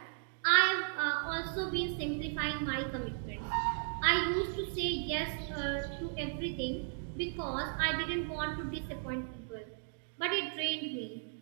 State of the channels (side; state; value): left; silent; digital silence